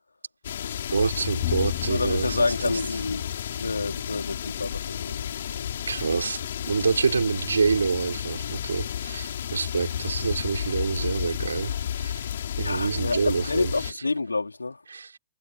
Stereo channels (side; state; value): both; inverted; correlation -0.81